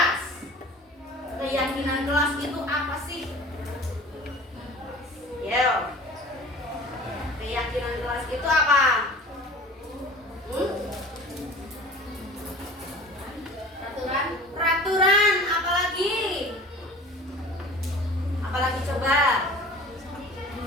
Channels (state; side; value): normal; both; correlation 0.42